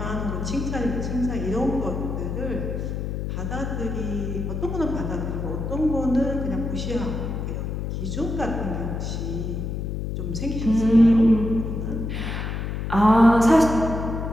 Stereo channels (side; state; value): left; noise; hum, 3 dB below the sound